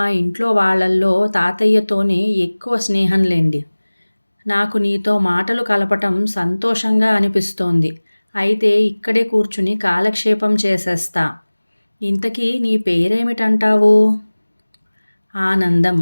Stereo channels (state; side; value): inverted; both; correlation -1.00